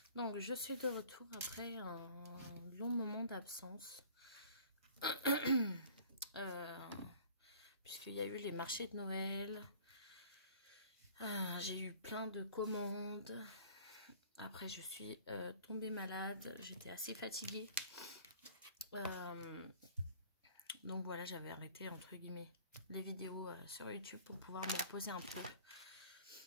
Donc je suis de retour après un long moment d'absence. Puisqu'il y a eu les marchés de Noël. J'ai eu plein de commandes. Après je suis tombée malade. J'étais assez fatiguée. Donc voilà, j'avais arrêté entre guillemets les vidéos sur YouTube pour pouvoir me reposer un peu.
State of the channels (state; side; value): inverted; both; correlation -0.49